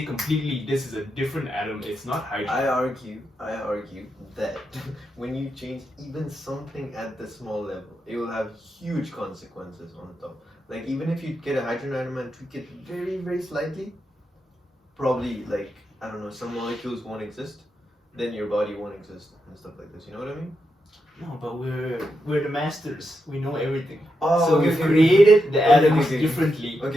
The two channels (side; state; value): both; normal; correlation 0.85